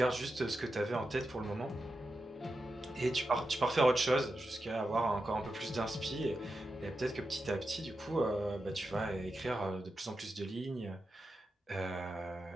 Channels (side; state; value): both; normal; correlation 0.89